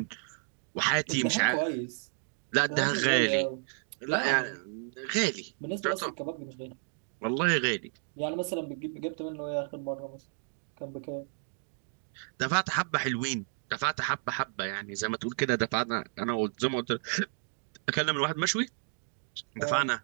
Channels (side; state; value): left; silent; digital silence